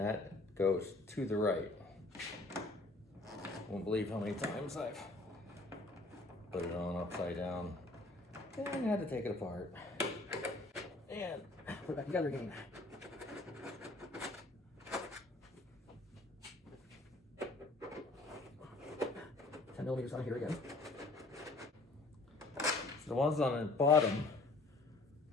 goes to the right. Won't believe how many times I've put it on upside down and had to take it apart. And put it back together again. $10mm on here again. So the ones on the bottom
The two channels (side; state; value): right; quieter; 3.1 dB